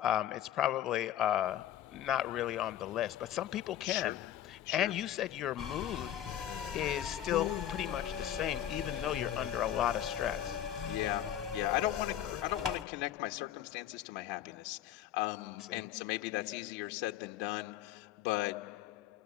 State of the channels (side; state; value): right; quieter; 11.3 dB